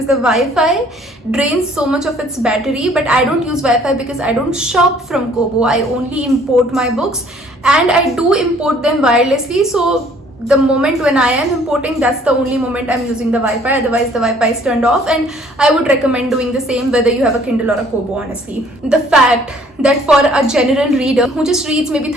the Wi-Fi drains so much of its battery. But I don't use Wi-Fi because I don't shop from Kobo. I only import my books, and I do import them wirelessly. So the moment when I am importing, that's the only moment I'm using the Wi-Fi. Otherwise the Wi-Fi is turned off, and I would recommend doing the same whether you have a Kindle or a Kobo, honestly. The fact that for a general reader who just reads maybe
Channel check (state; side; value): normal; both; correlation 0.58